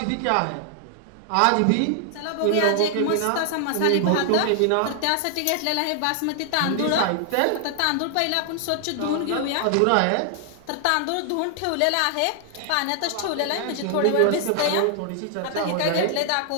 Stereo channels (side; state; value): both; different; correlation 0.00